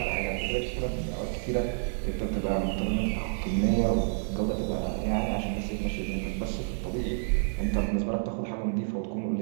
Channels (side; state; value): left; silent; 58 dB below the other